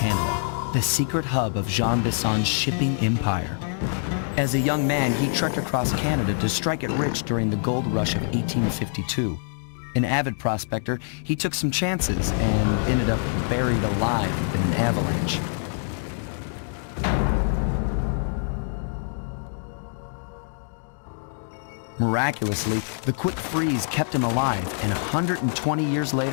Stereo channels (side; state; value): right; silent; digital silence